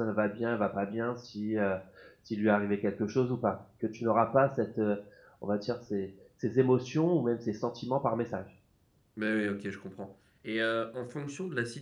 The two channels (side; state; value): both; identical; correlation 1.00